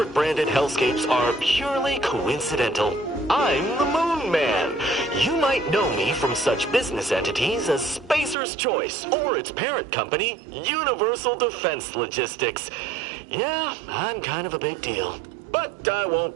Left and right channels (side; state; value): left; drops out; at 8.3 s